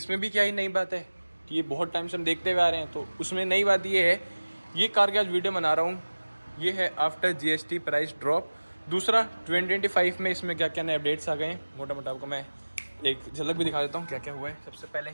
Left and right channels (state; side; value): inverted; both; correlation -1.00